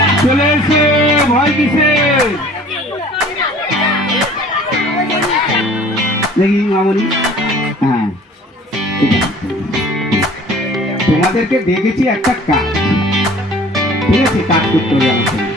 চলে এসে ভয় কিসে দেখি মামনি। হ্যাঁ, তোমাদেরকে দেখেছি একটা কাজ, ঠিক আছে, কাজ করতে হবে আমার সঙ্গে।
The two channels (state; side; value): normal; both; correlation 0.49